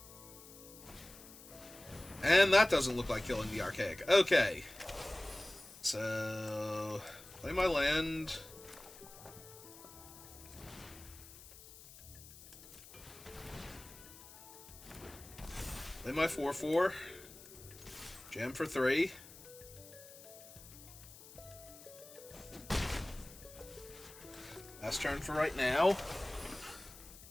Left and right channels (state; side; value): noise; left; hiss, 18 dB below the sound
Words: And that doesn't look like killing the Archaic. Okay. So, play my land. Play my 4/4. Jam for 3. Last turn for right now.